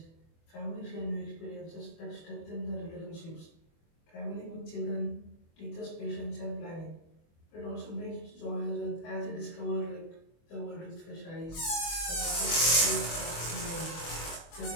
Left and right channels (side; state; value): right; late; 24 ms